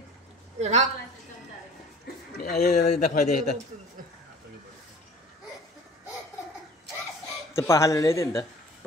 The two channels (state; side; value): normal; both; correlation 0.45